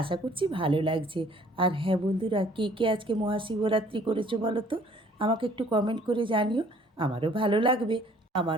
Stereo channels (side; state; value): both; normal; correlation 0.57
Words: আশা করছি ভালো লাগছে। আর হ্যাঁ বন্ধুরা, কে কে আজকে মহাশিবরাত্রি করেছো বলো তো, আমাকে একটু কমেন্ট করে জানিও, আমারও ভালো লাগবে।